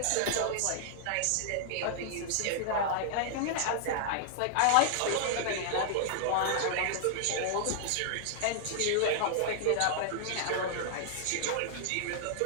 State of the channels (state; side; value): different; both; correlation -0.01